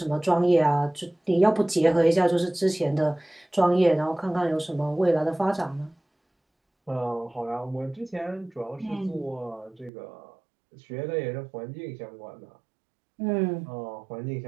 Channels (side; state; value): left; drops out; at 9.9 s